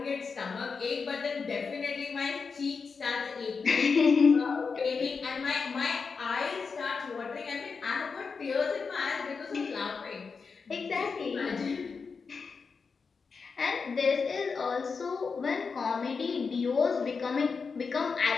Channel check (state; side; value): quieter; right; 5.1 dB